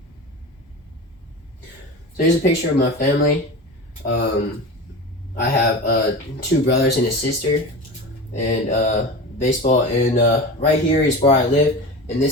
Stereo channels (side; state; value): both; normal; correlation 0.29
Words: So here's a picture of my family. I have two brothers and a sister, and baseball. And right here is where I live, and